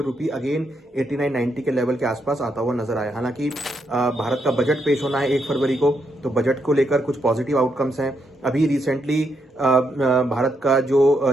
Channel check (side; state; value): both; normal; correlation 0.79